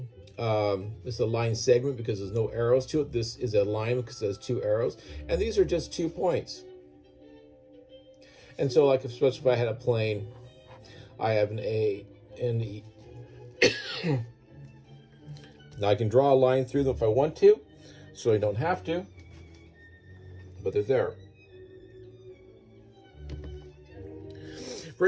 this is a line segment because there's no arrows to it. This is a line because it has two arrows. And these are just 2 points. And so, like, especially if I had a plane, I have an A and E. Now I can draw a line through them if I want to, so I don't have to, but they're there.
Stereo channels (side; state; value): both; identical; correlation 1.00